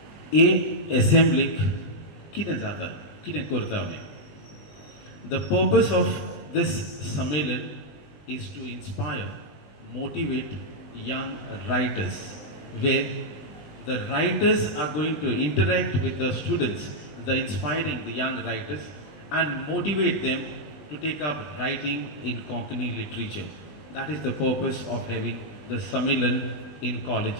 A assembly कितें जाता कितें करता आमी. The purpose of this Sammelan is to inspire, motivate young writers, where the writers are going to interact with the students, the inspiring the young writers, and motivate them to take up writing in Konkani literature. That is the purpose of having the Sammelan in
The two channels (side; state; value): right; late; 20 ms